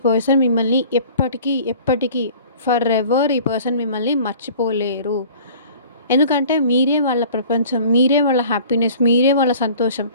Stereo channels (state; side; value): inverted; both; correlation -0.48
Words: పర్సన్ మిమ్మల్ని ఎప్పటికీ ఫర్ ఎవర్ ఈ పర్సన్ మిమ్మల్ని మర్చిపోలేరు. ఎందుకంటే మీరే వాళ్ళ ప్రపంచం, మీరే వాళ్ళ హ్యాపీనెస్, మీరే వాళ్ళ సంతోషం